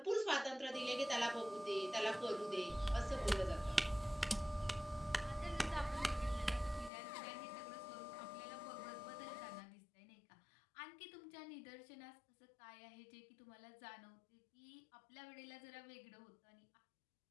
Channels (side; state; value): right; drops out; at 6.9 s